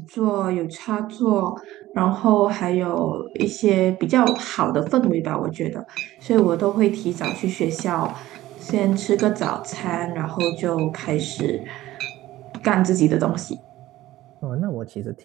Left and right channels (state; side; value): quieter; left; 15.8 dB